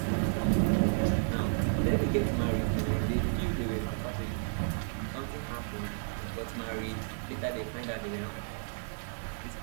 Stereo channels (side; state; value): left; silent; digital silence